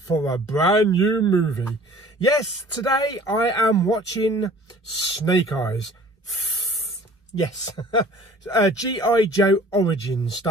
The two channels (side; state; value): both; normal; correlation 0.49